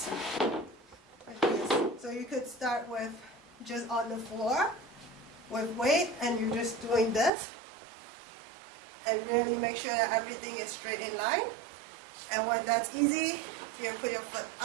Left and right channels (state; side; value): drops out; left; at 7.3 s